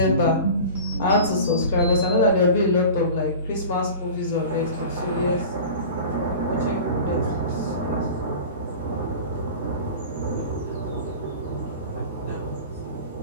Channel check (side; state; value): both; inverted; correlation -0.37